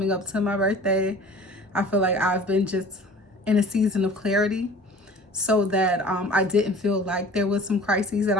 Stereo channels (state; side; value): normal; both; correlation 0.45